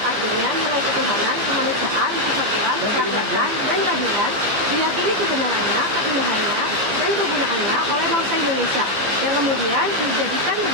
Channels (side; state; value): left; late; 15 ms